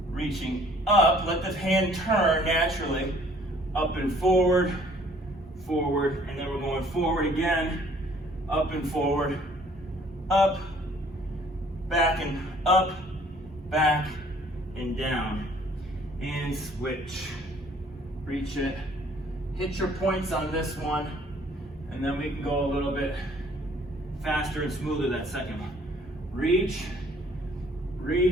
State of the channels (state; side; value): normal; both; correlation 0.58